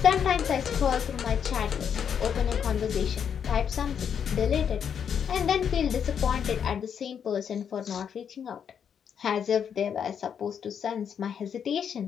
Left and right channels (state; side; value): quieter; right; 7.8 dB